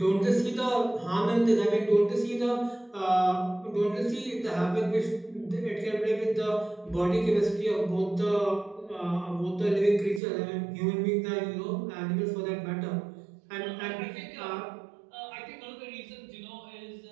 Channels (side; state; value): left; drops out; at 10.2 s